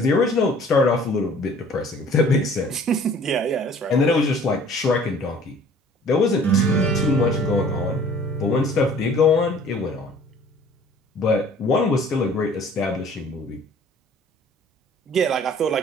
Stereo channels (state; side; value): normal; both; correlation 0.52